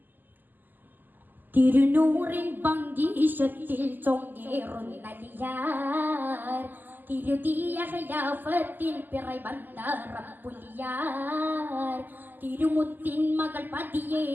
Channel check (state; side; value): late; left; 0.088 ms